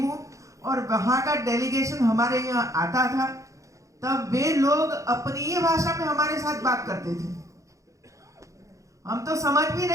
हूं और वहां का डेलीगेशन हमारे यहाँ आता था, तब वे लोग अपनी ही भाषा में हमारे साथ बात करते थे। हम तो समझ भी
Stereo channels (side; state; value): left; late; 0.15 ms